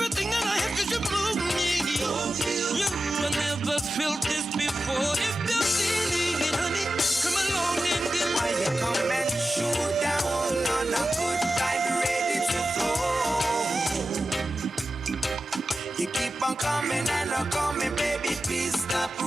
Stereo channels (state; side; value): normal; both; correlation 0.94